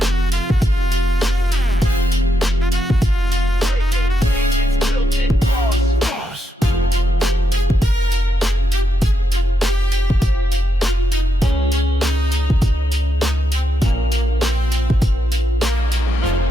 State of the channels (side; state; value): both; normal; correlation 0.82